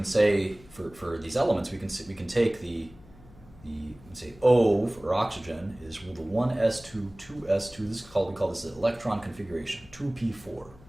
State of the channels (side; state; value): left; noise; hum, 23 dB below the sound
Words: say for these elements we can take the say O for oxygen is the 1s2 2s2. This is called, we call this the electron configuration 2p4. You